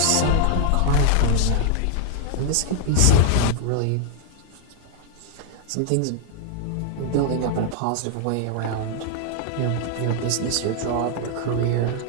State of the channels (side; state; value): both; different; correlation 0.00